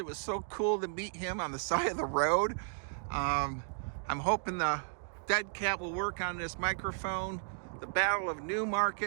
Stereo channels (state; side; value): silent; left; digital silence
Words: was so cool to meet him on the side of the road. I'm hoping the dead cat will work on this microphone. The Battle of